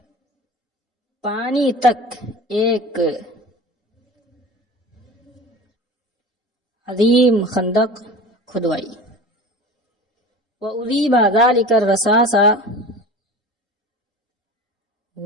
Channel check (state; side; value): normal; both; correlation 0.36